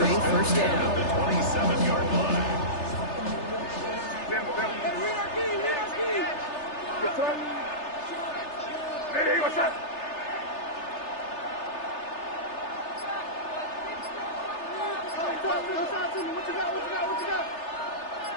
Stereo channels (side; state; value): right; late; 3.3 ms